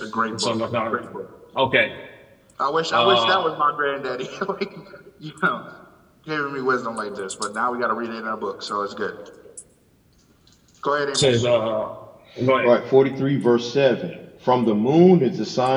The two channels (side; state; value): both; identical; correlation 1.00